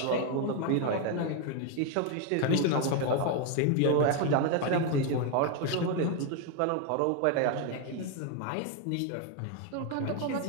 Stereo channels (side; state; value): both; different; correlation 0.01